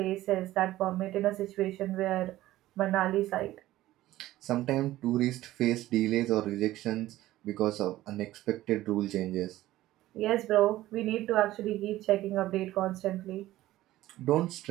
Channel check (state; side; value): quieter; left; 15.6 dB